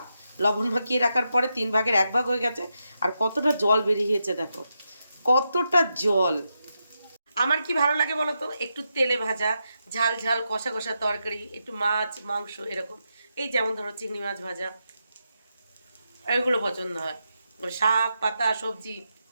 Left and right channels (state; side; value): inverted; both; correlation -0.86